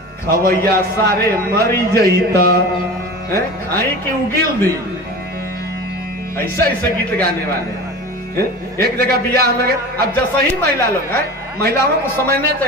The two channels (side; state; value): both; normal; correlation 0.34